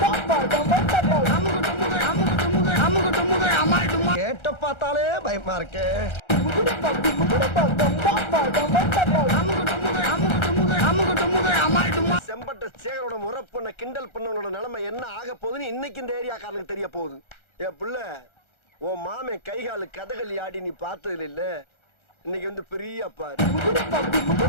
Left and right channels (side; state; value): right; late; 1.3 ms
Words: கேட்ட பார்த்தாலே பயமா இருக்கு. செம்பட்ட சேகரோட முறை பண்ண கிண்டல் பண்ணவனோட நிலைமை என்ன ஆக போகுதுன்னு இன்னைக்கு இந்த ஏரியாக்காரனுக்கு தெரிய போகுது. ஏ புள்ள, உன் மாமே கைகாலு கதகளி ஆடி நீ பார்த்தது இல்ல, இன்னைக்கு வந்து பெரிய பாரு.